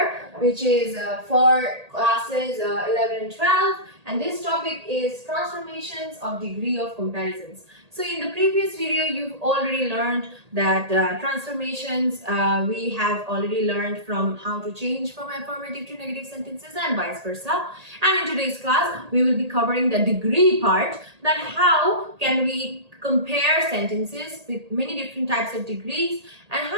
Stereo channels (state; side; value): late; left; 1.8 ms